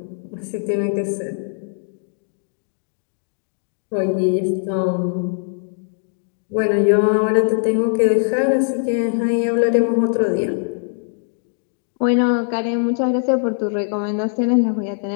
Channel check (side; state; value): right; silent; digital silence